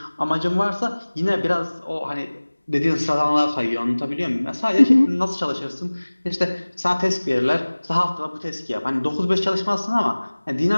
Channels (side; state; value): both; inverted; correlation -1.00